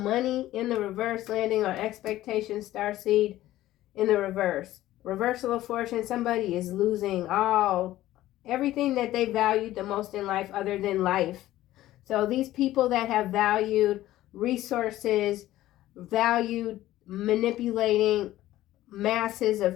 in the reverse, landing on expectation, starseed in the reverse. Reversal of fortune. Somebody is losing everything that they valued the most in life other than life. So these people that have valued resources, valued manipulating masses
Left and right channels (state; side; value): quieter; right; 14.9 dB